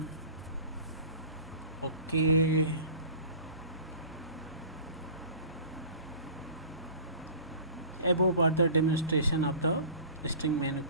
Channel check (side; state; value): both; inverted; correlation -0.42